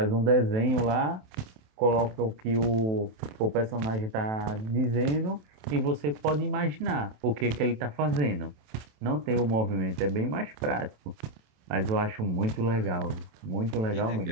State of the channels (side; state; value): left; late; 28 ms